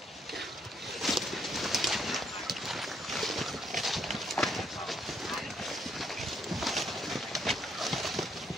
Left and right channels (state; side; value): normal; both; correlation 0.72